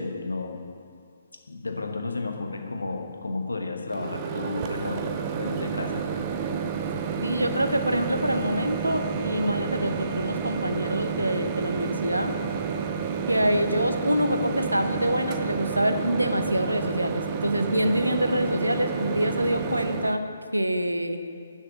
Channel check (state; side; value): inverted; both; correlation -0.77